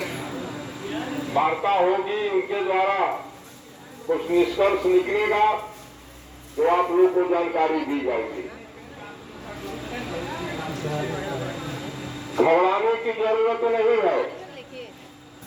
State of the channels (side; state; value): both; identical; correlation 1.00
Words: वार्ता होगी, उनके द्वारा कुछ निष्कर्ष निकलेगा तो आप लोग को जानकारी दी जाएगी। घबराने की जरूरत नहीं है।